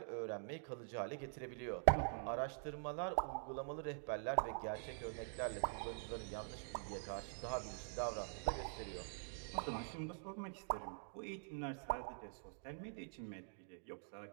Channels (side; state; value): left; silent; digital silence